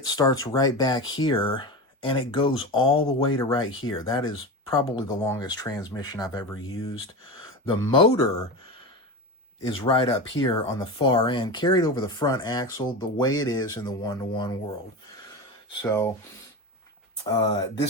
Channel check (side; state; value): both; normal; correlation 0.24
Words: starts right back here, and it goes all the way to right here. That is probably the longest transmission I've ever used. The motor is right up here on the far end, carried over the front axle the way it is in the 1-to-1 world. So